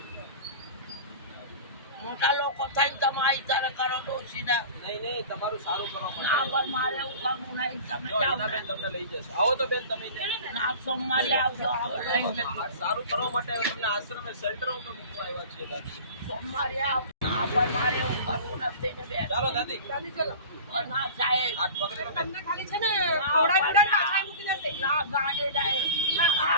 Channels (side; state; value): both; inverted; correlation -0.39